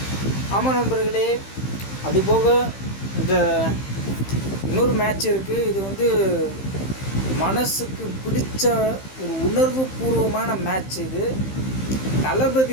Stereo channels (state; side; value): late; right; 15 ms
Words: ஆமாம் நண்பர்களே, அதுபோக இந்த இன்னொரு மேட்ச் இருக்குது. இது வந்து மனசுக்கு பிடிச்ச ஒரு உணர்வு பூர்வமான மேட்ச். இது